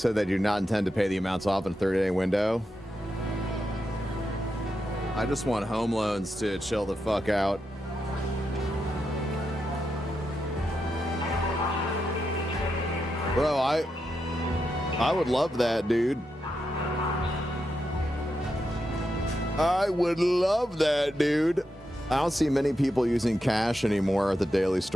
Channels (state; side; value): normal; both; correlation 0.86